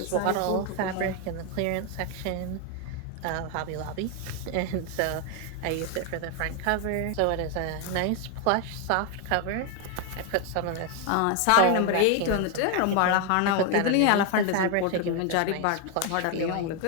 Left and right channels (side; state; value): both; different; correlation 0.01